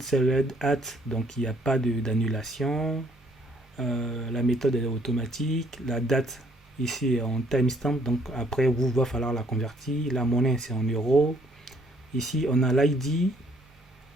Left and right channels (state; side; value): normal; both; correlation 0.65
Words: at, donc il n'y a pas d'annulation. La méthode est automatique. La date, ici, est en timestamp. Donc après, vous va falloir la convertir. La monnaie, c'est en euros. Ici, on a l'ID.